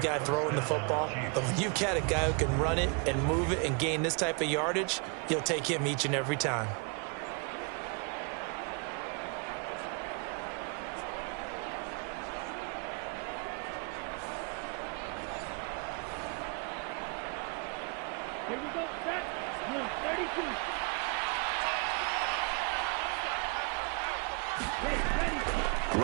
throwing the football. But when you've got a guy who can run it and move it and gain this type of yardage, you'll take him each and every time. Here we go, set. Number 32.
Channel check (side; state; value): left; quieter; 34.1 dB